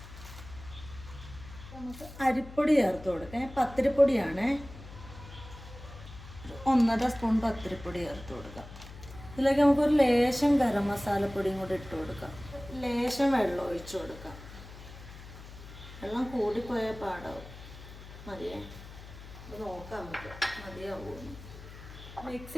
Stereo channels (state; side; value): noise; left; hum, 15 dB below the sound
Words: നമുക്ക് അരിപ്പൊടി ചേർത്ത് കൊടുക്കാം. പത്തിരിപ്പൊടിയാണ്, 1.5 സ്പൂൺ പത്തിരിപ്പൊടി ചേർത്ത് കൊടുക്കാം. ഇതിലേക്ക് നമുക്കൊരു ലേശം ഗരം മസാലപ്പൊടിയും കൂടി ഇട്ട് കൊടുക്കാം. ലേശം വെള്ളം ഒഴിച്ചു കൊടുക്കാം. വെള്ളം കൂടിപ്പോയാൽ പാടാവും. മതിയേ, ഇത് നോക്കാം നമുക്ക് മതിയാവുമെന്ന്. മിക്സ്